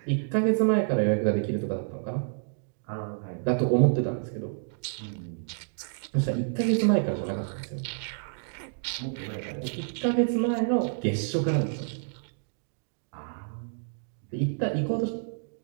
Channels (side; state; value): left; silent; digital silence